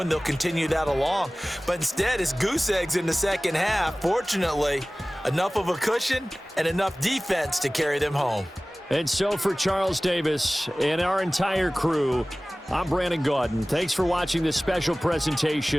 They'll continue that along. But instead, it's goose eggs in the second half. Fortunately, enough of a cushion and enough defense to carry them home. And so for Charles Davis and our entire crew, I'm Brandon Gaudin. Thanks for watching this special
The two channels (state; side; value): normal; both; correlation 0.98